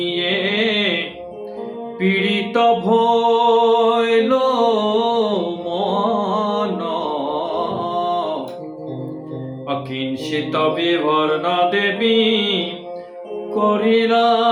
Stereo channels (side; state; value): both; identical; correlation 1.00